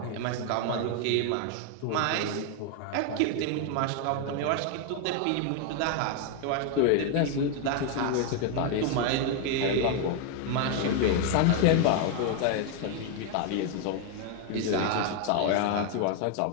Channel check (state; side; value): different; both; correlation 0.01